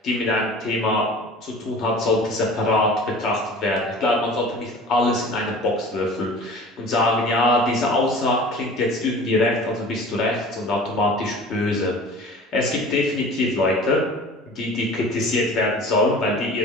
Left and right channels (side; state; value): both; normal; correlation 0.42